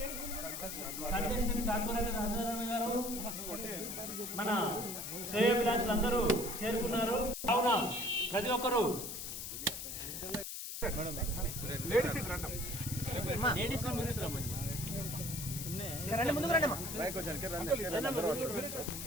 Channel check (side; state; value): left; noise; hiss, 6 dB below the sound